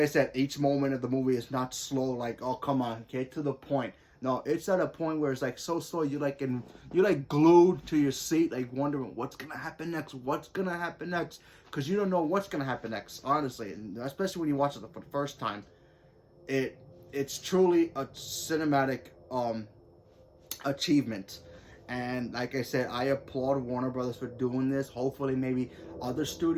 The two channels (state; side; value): identical; both; correlation 1.00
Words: said, each moment of the movie is not slow. Like, oh, come on, get to the point. No, it's at a point where it's like so slow. You're like glued to your seat, like wondering what's gonna happen next. What's gonna happen next? Because you don't know what's gonna happen next. Honestly, and especially when you watch it for the first time, it's truly a cinematic achievement. And like I said, I applaud Warner Brothers for doing this. Hopefully, maybe other